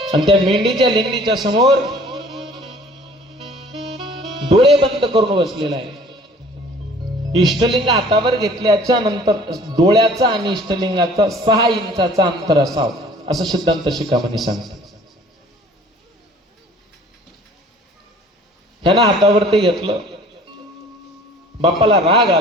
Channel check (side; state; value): both; normal; correlation 0.51